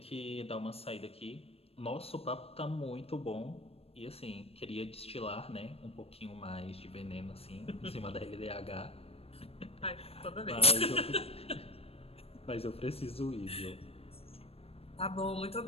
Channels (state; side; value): late; right; 0.28 ms